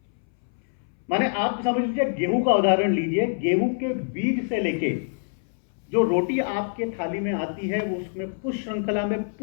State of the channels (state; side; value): silent; right; 61 dB below the other